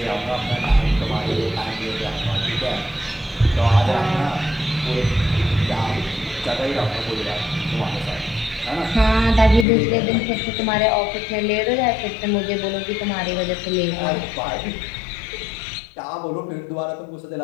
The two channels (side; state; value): right; drops out; at 9.7 s